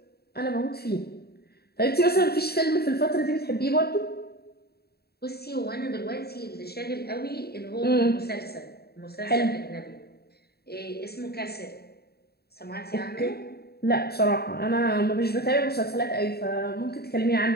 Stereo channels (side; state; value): right; late; 0.46 ms